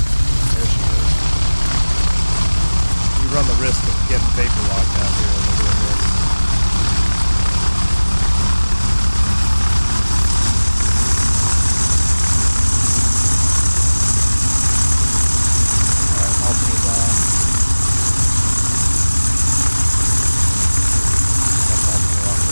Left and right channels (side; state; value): both; inverted; correlation -1.00